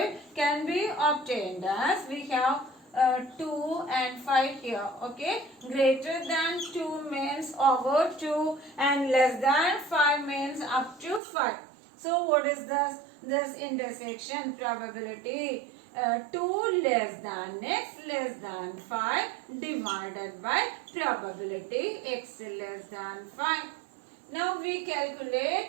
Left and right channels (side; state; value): left; drops out; at 11.2 s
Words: can be obtained as we have 2 and 5 here. Okay, greater than 2 means over 2 and less than 5 means up to 5. So what is this intersection probability? 2 less than x less than 5 divided by probability x less than 5. Now we